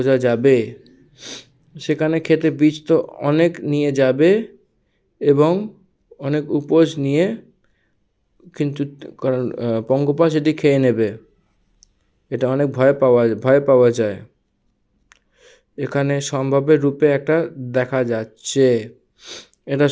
যাবে। সেখানে খেতে বীজ তো অনেক নিয়ে যাবে এবং অনেক উপোস নিয়ে, কিন্তু কারণ পঙ্গপাল সেটি খেয়ে নেবে, এটা অনেক ভয় পাওয়া যায়। এখানে সম্ভাব্যের রূপে একটা দেখা যাচ্ছে, এটা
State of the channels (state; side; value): identical; both; correlation 1.00